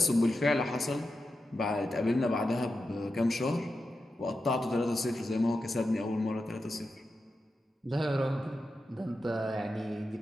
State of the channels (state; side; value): normal; both; correlation 0.90